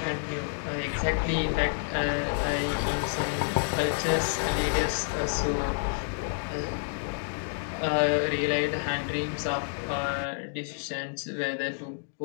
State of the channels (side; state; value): right; silent; digital silence